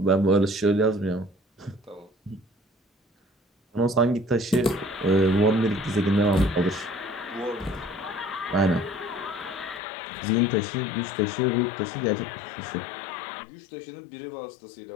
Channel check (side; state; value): right; drops out; at 9.8 s